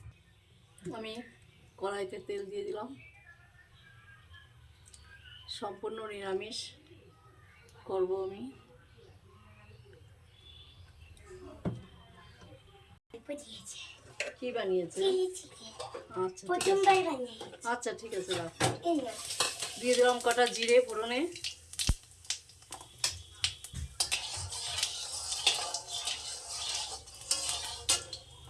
আমি কড়াইতে তেল দিয়ে দিলাম। সম্পূর্ণ নিরামিষ করব আমি। কি বানিয়েছে? আচ্ছা ঠিক আছে, রাখ। দিয়ে দিলাম কটা জিরে ফোড়নে।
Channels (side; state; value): both; identical; correlation 1.00